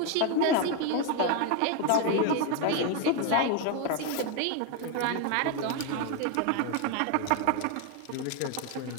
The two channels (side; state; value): both; different; correlation 0.01